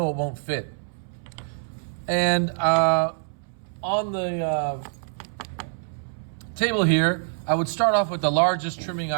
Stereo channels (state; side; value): silent; left; 61 dB below the other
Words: it won't fit. And on the table here, I would start off with the largest trimming